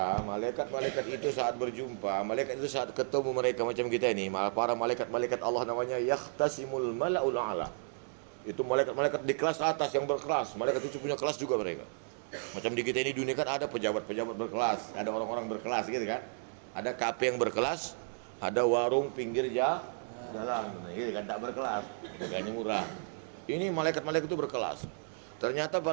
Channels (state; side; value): silent; left; digital silence